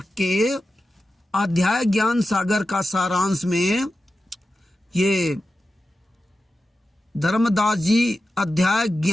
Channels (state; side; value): normal; both; correlation 0.92